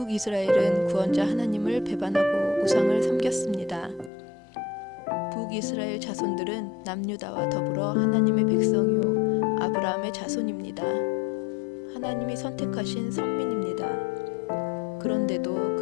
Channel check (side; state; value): right; drops out; at 4.1 s